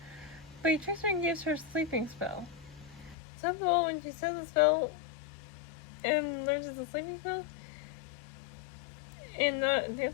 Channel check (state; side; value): drops out; right; at 3.2 s